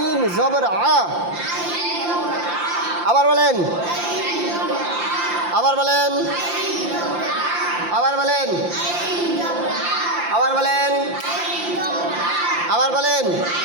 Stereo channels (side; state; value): left; late; 5.8 ms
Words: জবর আবার বলেন আবার বলেন আবার বলেন আবার বলেন আবার বলেন